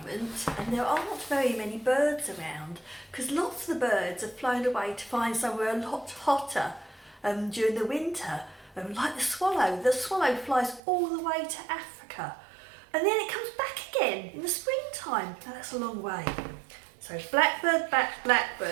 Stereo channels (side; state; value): left; drops out; at 10.8 s